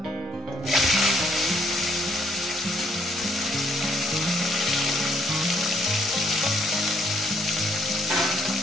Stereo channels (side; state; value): both; normal; correlation 0.69